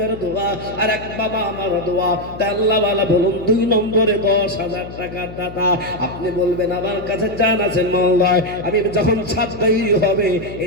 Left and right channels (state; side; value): noise; left; hum, 13 dB below the sound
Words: দোয়া, আর এক বাবা আমার দোয়া। তাই আল্লাহ ওয়ালা বলুন 2 নম্বরে 10,000 টাকার দাতা। আপনি বলবেন আমার কাছে জান আছে মওলায়, আমি যখন ছাদ তৈরি হবে